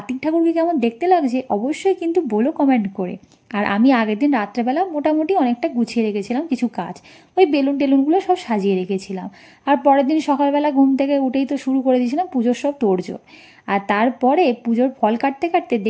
ঠাকুরকে কেমন দেখতে লাগছে অবশ্যই কিন্তু বলো কমেন্ট করে। আর আমি আগের দিন রাত্রেবেলা মোটামুটি অনেকটা গুছিয়ে রেখেছিলাম কিছু কাজ, ওই বেলুন টেলুনগুলো সব সাজিয়ে রেখেছিলাম। আর পরের দিন সকালবেলা ঘুম থেকে উঠেই তো শুরু করে দিয়েছিলাম পুজোর সব তোড়জোড়। আর তারপরে পুজোর ফল কাটতে কাটতে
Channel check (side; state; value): both; identical; correlation 1.00